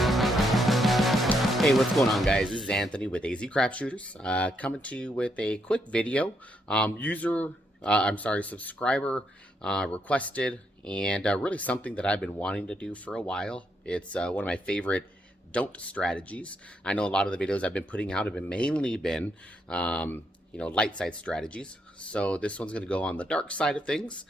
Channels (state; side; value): normal; both; correlation 0.77